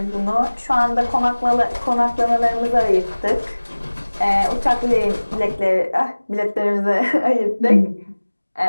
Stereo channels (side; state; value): both; inverted; correlation -1.00